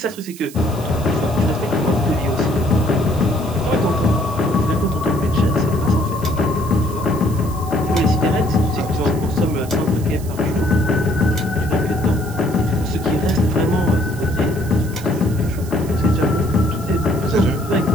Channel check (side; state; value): right; noise; hiss, 17 dB below the sound